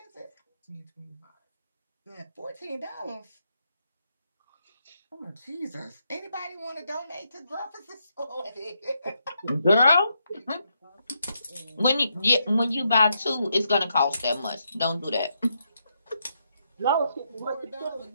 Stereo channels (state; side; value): inverted; both; correlation -0.80